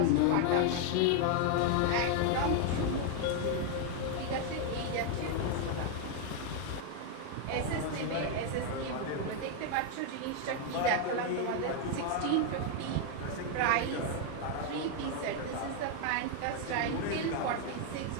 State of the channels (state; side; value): different; both; correlation 0.00